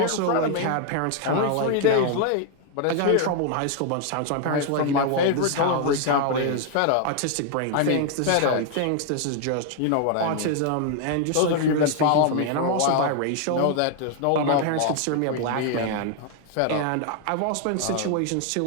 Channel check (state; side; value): different; both; correlation 0.00